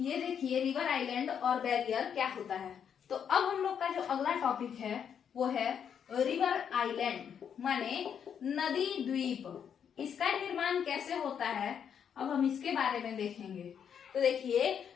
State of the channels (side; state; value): right; quieter; 8.0 dB